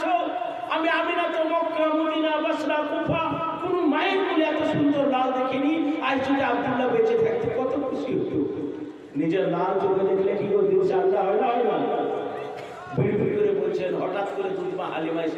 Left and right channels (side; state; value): both; identical; correlation 1.00